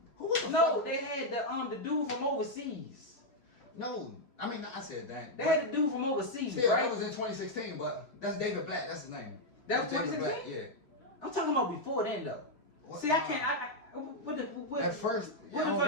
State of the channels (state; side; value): late; right; 3.6 ms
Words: Who was the no, fuck? they had the dude from overseas. No, I mean I said that. They had the dude from overseas, Still, right? that was in 2016, but that's David Black. That's his name. That was David 2016? Black, yeah. I'm talking about before then though. What- See, I can't. What At first, where the I don't fuck